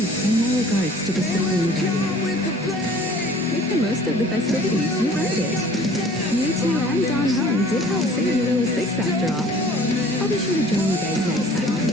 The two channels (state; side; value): normal; both; correlation 0.50